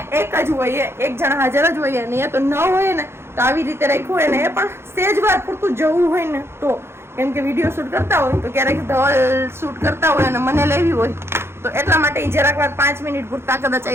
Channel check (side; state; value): left; late; 0.12 ms